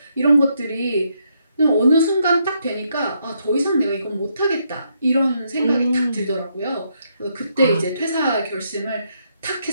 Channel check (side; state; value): both; inverted; correlation -0.76